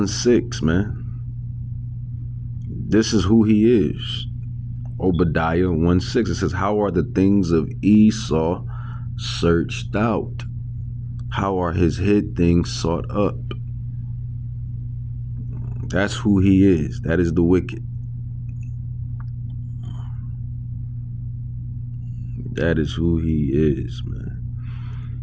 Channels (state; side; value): identical; both; correlation 1.00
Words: man. This is who he is. Obadiah 1:6. It says, how are the things of Esau searched out? How are his hid things sought up? That's who he is. That is the wicked. That is who he is, man.